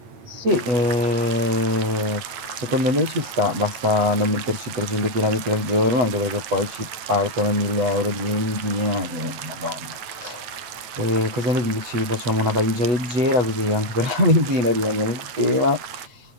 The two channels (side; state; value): left; late; 9.1 ms